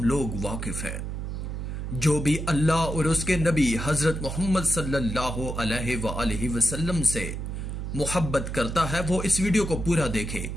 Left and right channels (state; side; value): noise; right; hum, 5 dB below the sound